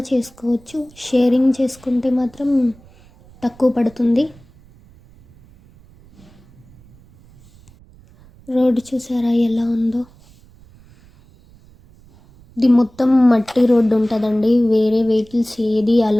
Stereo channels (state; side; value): noise; right; rumble, 26 dB below the sound